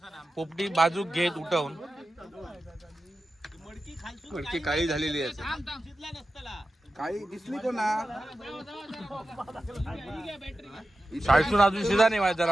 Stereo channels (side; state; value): both; normal; correlation 0.93